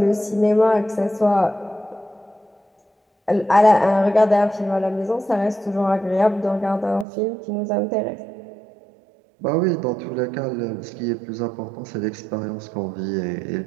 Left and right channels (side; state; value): left; drops out; at 7.1 s